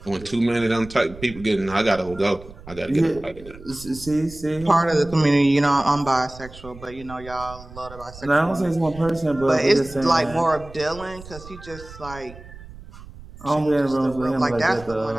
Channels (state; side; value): noise; right; rumble, 17 dB below the sound